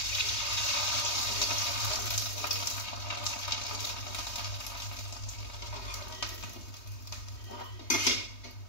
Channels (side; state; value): right; late; 3.2 ms